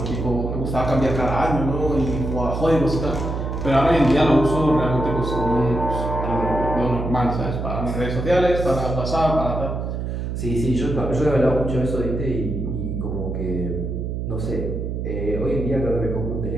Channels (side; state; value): right; noise; hum, 3 dB below the sound